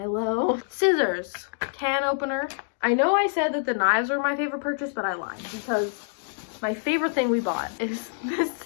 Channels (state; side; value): silent; right; digital silence